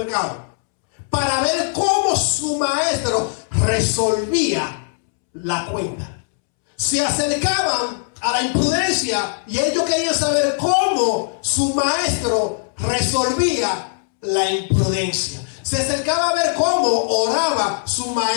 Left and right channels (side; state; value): right; silent; 66 dB below the other